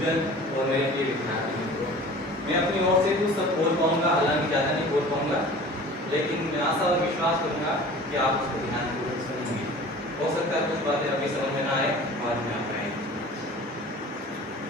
और मेरे प्रिय विद्यार्थी मित्रों, मैं अपनी ओर से कुछ सब बोल पाऊंगा, हालांकि ज़्यादा नहीं बोल पाऊंगा, लेकिन मैं आशा और विश्वास करूंगा कि आप उसको ध्यानपूर्वक सुनेंगे। हो सकता है कुछ बातें अभी समझ में ना आए, बाद में आप आएंगे।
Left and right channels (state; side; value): normal; both; correlation 0.42